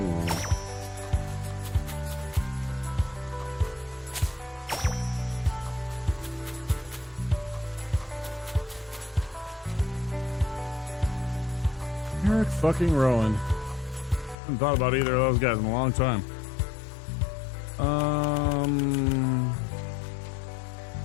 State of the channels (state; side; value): drops out; right; at 14.4 s